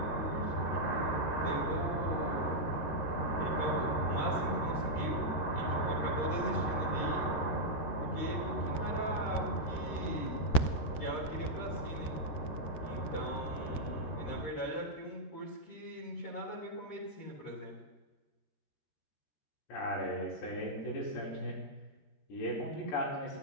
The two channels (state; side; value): late; right; 13 ms